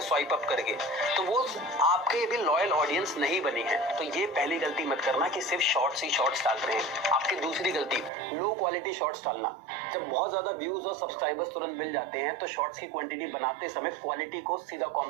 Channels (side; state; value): left; drops out; at 8.1 s